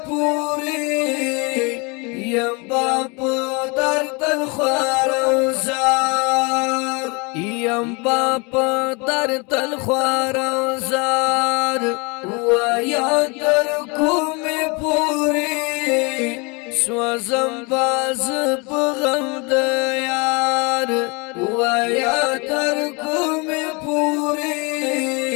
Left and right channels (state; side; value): quieter; right; 29.8 dB